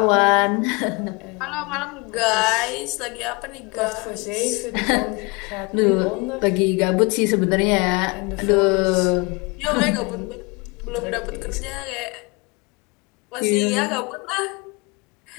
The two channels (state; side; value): quieter; right; 28.1 dB